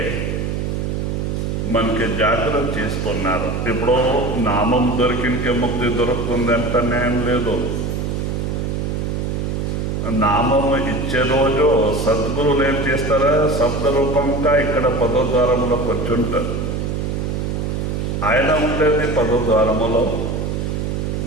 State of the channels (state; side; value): noise; right; hum, 1 dB below the sound